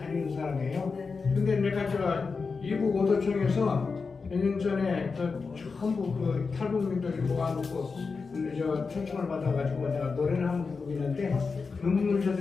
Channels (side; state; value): right; quieter; 4.7 dB